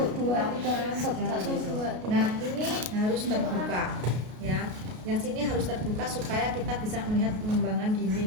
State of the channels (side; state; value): left; late; 33 ms